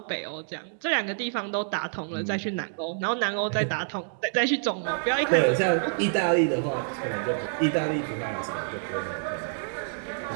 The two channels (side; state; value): left; silent; digital silence